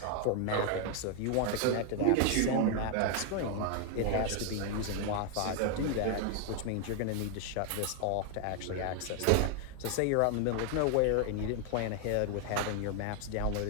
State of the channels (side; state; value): both; different; correlation 0.00